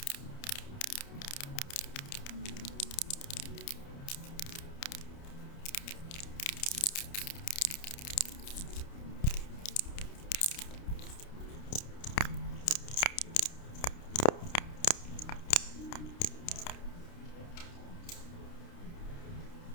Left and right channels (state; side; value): late; right; 29 ms